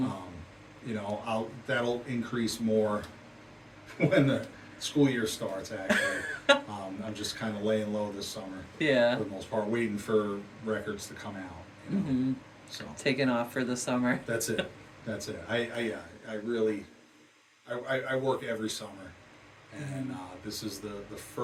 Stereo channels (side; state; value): both; identical; correlation 1.00